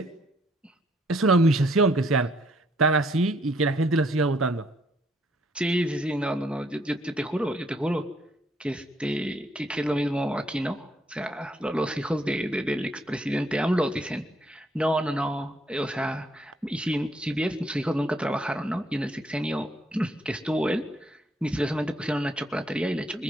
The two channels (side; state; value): both; normal; correlation 0.69